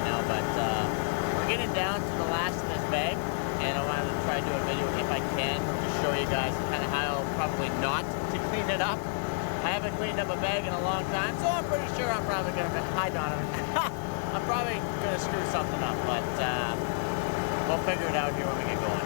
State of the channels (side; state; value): right; silent; digital silence